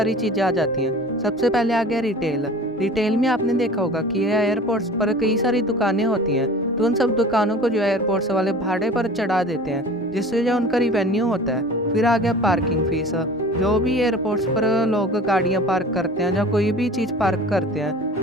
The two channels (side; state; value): both; normal; correlation 0.41